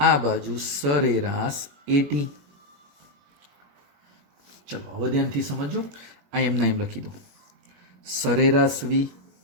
બાજુ સરેરાશ at. ચલો હવે ધ્યાનથી સમજો. આ એમના એમ લખી દો, સરેરાશ v.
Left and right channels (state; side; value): late; left; 21 ms